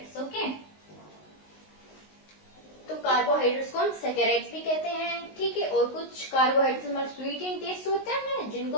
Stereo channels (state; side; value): late; right; 19 ms